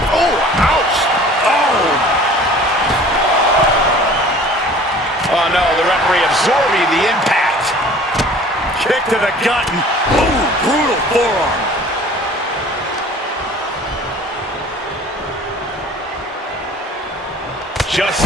Oh, ouch. Oh no, the referee absorbing the impact. Kick to the gut. Ooh, brutal forearm. Just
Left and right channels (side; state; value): both; normal; correlation 0.47